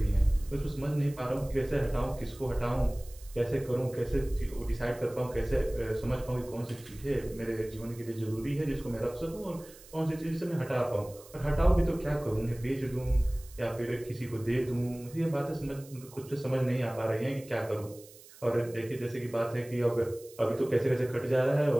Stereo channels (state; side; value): noise; right; hiss, 21 dB below the sound